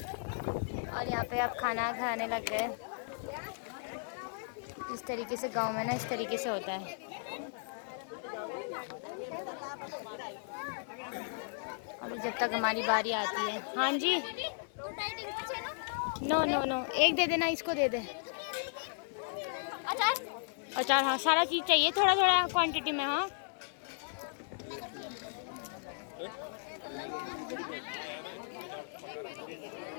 और यहाँ पे आप खाना खाने लग गए। इस तरीके से गांव में ना इस तरीके से होता है। अभी जब तक हमारी बारी आती है। हाँ जी, नो नो नो, एक दे देना, इसको दे दे। अचार, अचार हाँ, सारा चीज़ चाहिए थोड़ा थोड़ा क्वांटिटी में। हाँ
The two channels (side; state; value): right; silent; 54 dB below the other